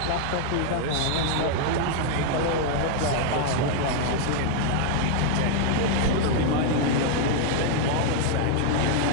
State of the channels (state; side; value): different; both; correlation 0.00